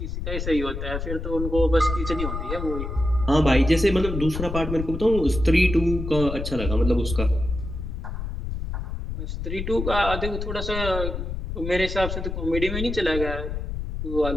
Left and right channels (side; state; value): left; noise; rumble, 5 dB below the sound